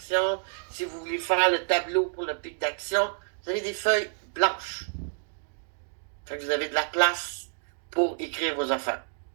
si vous voulez faire le tableau pour le pic d'action. Vous avez des feuilles blanches. Fait que vous avez de la place pour écrire vos affaires.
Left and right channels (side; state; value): left; silent; 59 dB below the other